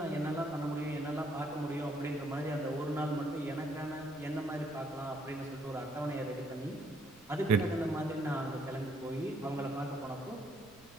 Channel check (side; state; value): right; noise; rumble, 24 dB below the sound